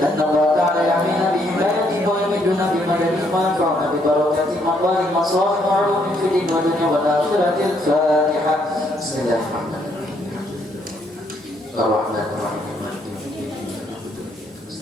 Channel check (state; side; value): normal; both; correlation 0.71